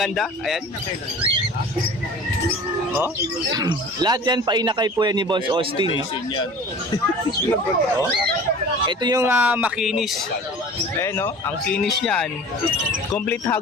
Ayan. Oh. Lahat yan, painakay po yan ni Boss Austin. Oh. Ito yung makinis. Ayan, no? Ang kinis niyan. Complete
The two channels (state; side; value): normal; both; correlation 0.42